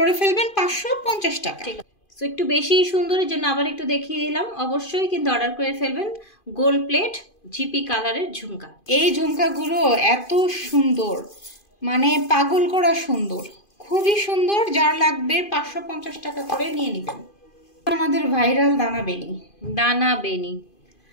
ফেলবেন 550 টাকা। ঠিক আছে, সো একটু বেশি সুন্দরের জন্য আবার একটু দেখিয়ে দিলাম। অবশ্যই কিন্তু অর্ডার করে ফেলবেন গোল্ড প্লেট জিপি কালারের ঝুমকা। এই ঝুমকাগুলো এত সুন্দর, মানে পাগল করা সুন্দর, খুবই সুন্দর। যার লাগবে 550 টাকা করে নিয়ে নেবেন। আমাদের ভাইরাল দানা বেনি। দানা বেনি,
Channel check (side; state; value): right; late; 2.5 ms